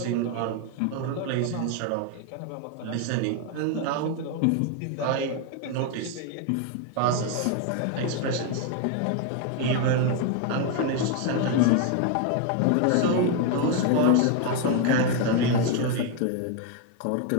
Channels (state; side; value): different; both; correlation 0.01